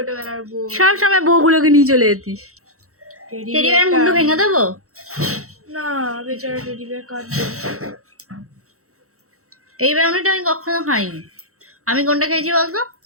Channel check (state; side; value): late; left; 0.64 ms